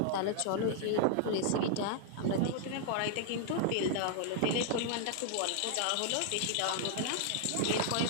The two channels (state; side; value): different; both; correlation 0.00